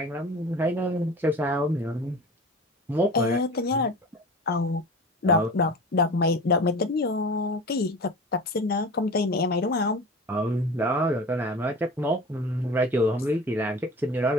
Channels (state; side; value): normal; both; correlation 0.36